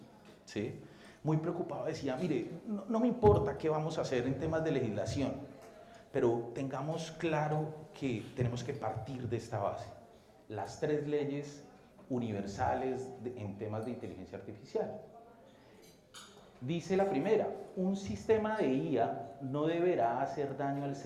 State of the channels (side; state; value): both; identical; correlation 1.00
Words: ¿sí? Muy preocupado, decía, mire, no me importa qué vamos a hacer en temas de legislación, pero tengamos claro que tenemos que partir de esta base. Las 3 leyes universales en temas de inteligencia artificial. Dice la primera, un sistema de IA no deberá hacer daño al